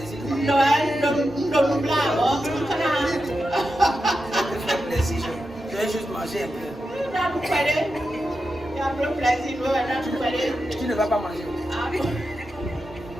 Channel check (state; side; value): normal; both; correlation 0.89